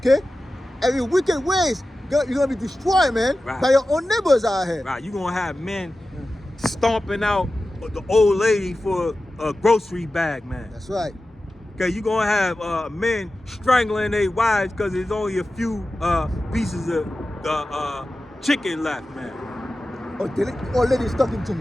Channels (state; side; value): normal; both; correlation 0.94